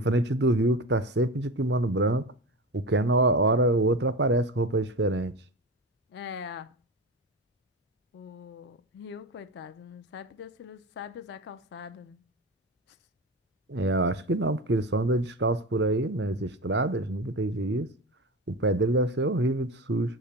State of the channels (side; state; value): both; normal; correlation 0.26